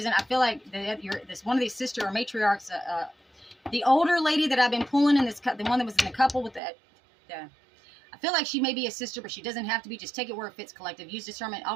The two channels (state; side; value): drops out; left; at 6.6 s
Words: I feel like this one of these sister or matriarchs, the older lady that I've been pulling in this, the one that was in the couple with I feel like she may be a sister, but she doesn't have to be. Just take it where it fits, collective. Use discernment.